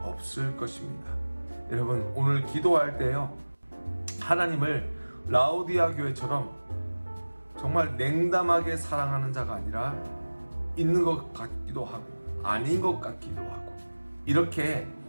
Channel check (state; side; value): inverted; both; correlation -1.00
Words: 없을 것입니다. 여러분, 오늘 기도할 때요, 하나님을 라오디아 교회처럼 정말 냉담하게 사랑하는 자가 아니라 있는 것 같기도 하고 아닌 것 같기도 하고 이렇게